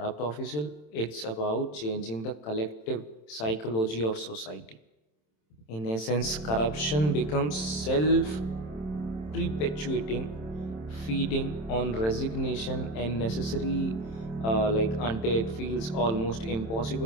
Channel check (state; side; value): late; right; 27 ms